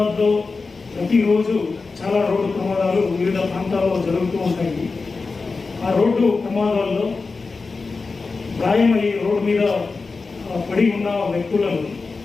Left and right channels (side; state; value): right; quieter; 4.2 dB